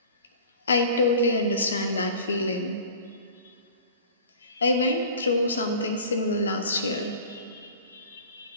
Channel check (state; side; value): inverted; both; correlation -0.42